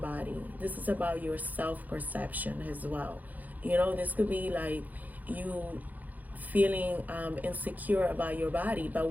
This is about your self-perception as well. This could be like you feeling insecure about your body, but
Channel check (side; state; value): left; late; 0.081 ms